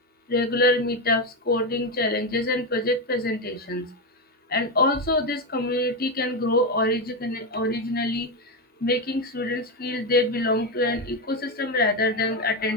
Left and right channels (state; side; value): normal; both; correlation 0.11